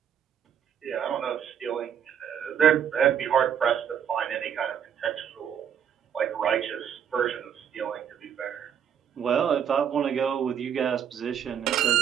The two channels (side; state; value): left; quieter; 8.6 dB